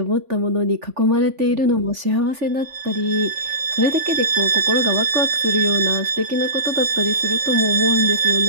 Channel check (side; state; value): left; late; 3.4 ms